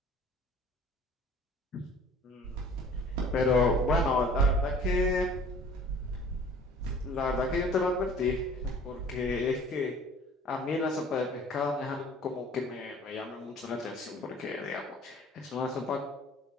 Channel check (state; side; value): normal; both; correlation 0.49